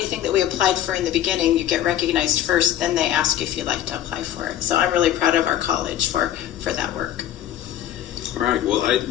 that we applied for in the beginning. You get recognized first, then they ask you if you'd like to apply for it. So I'm really proud of our college for that work. All right. Well,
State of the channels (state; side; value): quieter; right; 11.8 dB